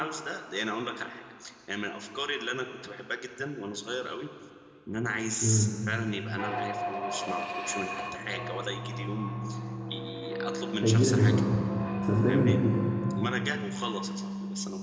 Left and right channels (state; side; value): identical; both; correlation 1.00